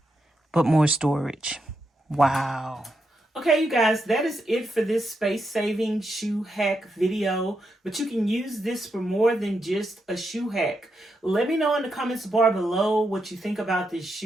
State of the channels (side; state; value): both; normal; correlation 0.83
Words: but more storage. Wow. Okay, you guys, that is it for this space-saving shoe hack video. But you can use this for more than just a shoe hack. Let me know in the comments bar below what you think about this